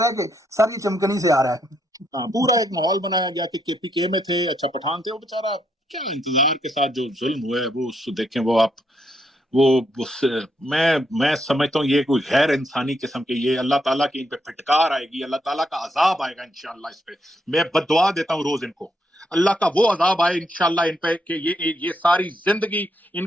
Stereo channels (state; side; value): normal; both; correlation 0.76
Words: ہے کہ سر یہ چمکنی سے آ رہا ہے. ہاں, پورا ایک ماحول بنایا گیا کہ کے پی کے میں تھے, اچھا پٹھان تھے. وہ بیچارہ کیا انتظار کے ساتھ جو ظلم ہوئے وہ دیکھیں. وہ آپ میں سمجھتا ہوں یہ کوئی غیر انسانی قسم کے, یہ اللہ تعالیٰ کی ان پہ پھٹکار آئے گی, اللہ تعالیٰ کا عذاب آئے گا انشاءاللہ اس پہ. میں بددعا دیتا ہوں روز ان کو, اللہ کا وہ عذاب آئے انشاءاللہ ان پہ کہ یہ ساری زندگی ان